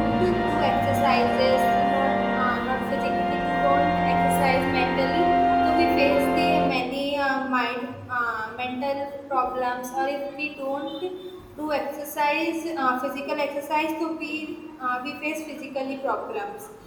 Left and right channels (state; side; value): identical; both; correlation 1.00